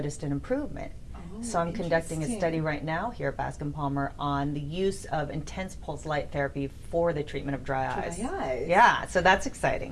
an improvement. So I'm conducting a study right now here at Bascom Palmer on the use of intense pulse light therapy for the treatment of dry eyes. Dry eyes. Yeah, so that's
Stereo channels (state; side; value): identical; both; correlation 1.00